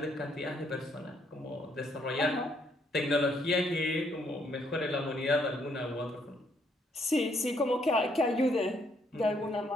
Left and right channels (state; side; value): normal; both; correlation 0.71